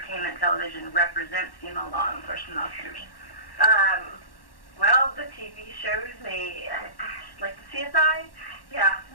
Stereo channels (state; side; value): late; right; 1.1 ms